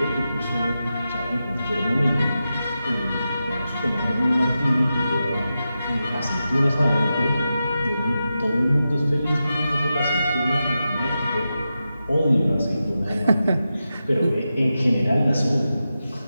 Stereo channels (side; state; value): both; inverted; correlation -0.90